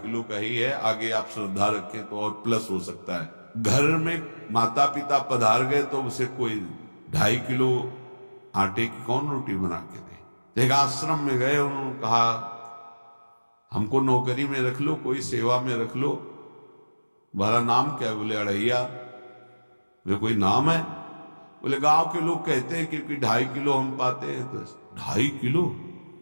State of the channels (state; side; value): inverted; both; correlation -1.00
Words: किलो का ही है, आगे आप श्रद्धा रखें तो और प्लस हो सकता है। घर में माता पिता पधार गए तो उसे कोई 2.5 किलो आटे की कौन रोटी बना के दे। एक आश्रम में गए, उन्होंने कहा हमको नौकरी में रख लो, कोई सेवा में रख लो, तुम्हारा नाम क्या है? बोले अढ़ैया। वे कोई नाम है? बोले गांव के लोग कहते हैं क्योंकि 2.5 किलो हम पाते हैं। तो 2.5 किलो?